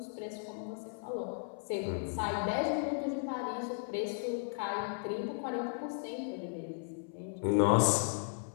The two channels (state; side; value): silent; right; 54 dB below the other